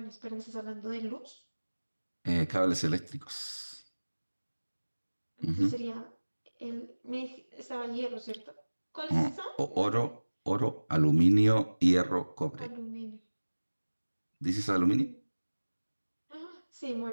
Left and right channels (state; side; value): inverted; both; correlation -1.00